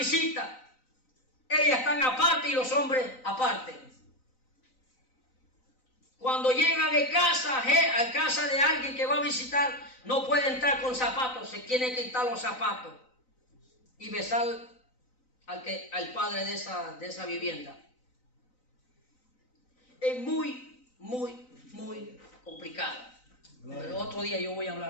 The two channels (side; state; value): right; late; 3.9 ms